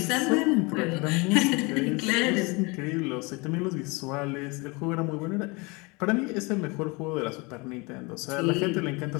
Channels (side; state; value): right; quieter; 27.5 dB